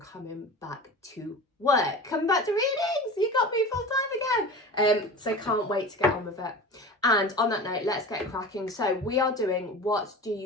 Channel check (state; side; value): normal; both; correlation 0.33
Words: back to work, coming back to readings. You got me full time again. So can't wait to get on with it. And on that note, let's get cracking. So we are doing what do